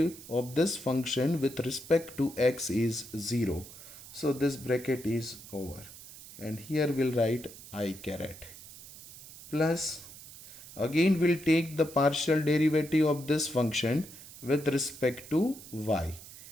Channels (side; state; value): right; noise; hiss, 16 dB below the sound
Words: of this function with respect to x is 0. So this bracket is over. And here we'll write I caret. Plus, again we'll take the partial derivative of this function with respect to y.